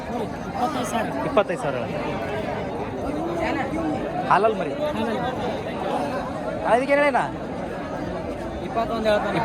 25,000 ಹಾಲಲ್ಲಿ ಮರಿ ಅದಕ್ಕೆ ಏನೇನ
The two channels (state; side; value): identical; both; correlation 1.00